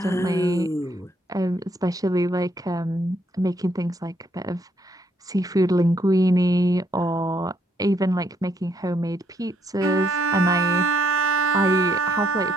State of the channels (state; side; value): normal; both; correlation 0.71